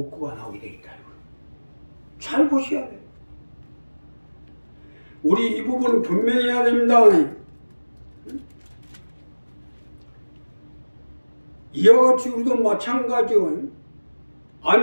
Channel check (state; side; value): inverted; both; correlation -1.00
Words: 없고가 나오게 되겠다. 잘 보셔야 돼요. 우리 이 부분은 분명히 해야 됩니다. 이와 같이 우리도 마찬가지요.